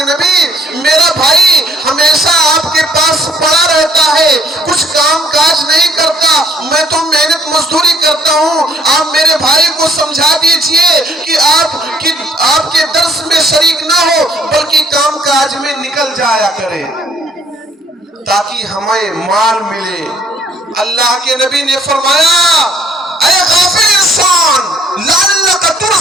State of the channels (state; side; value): normal; both; correlation 0.62